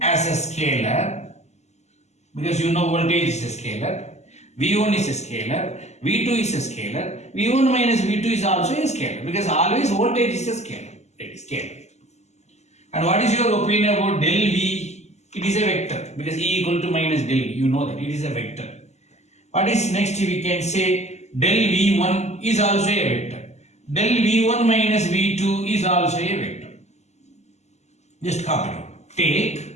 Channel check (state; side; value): late; right; 0.33 ms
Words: as a scalar, because you know voltage is a scalar. V1 is a scalar, V2 is a scalar, V1 minus V2 is also a scalar, because always voltage is a scalar. It is scalar. And what is your opinion about del V? It is a vector, because E equal to minus del V. You know that it is a vector. What is next? We can say del V1 is also a vector. Del V1 minus V2 is also a vector. Just copy it. Take